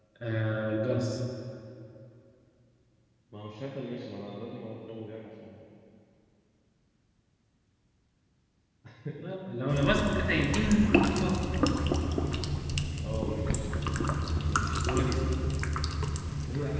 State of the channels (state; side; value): identical; both; correlation 1.00